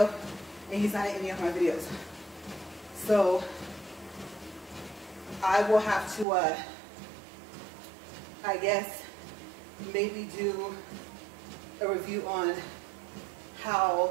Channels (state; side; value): drops out; left; at 6.2 s